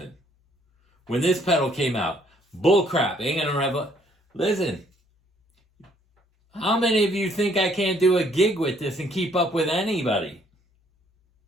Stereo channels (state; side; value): normal; both; correlation 0.65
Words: When this pedal came out, bullcrap. Ain't going to Listen. How many of you think I can't do a gig with this and keep up with anybody?